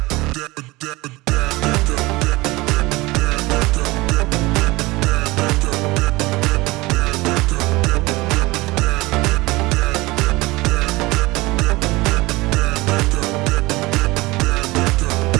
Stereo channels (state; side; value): quieter; left; 21.4 dB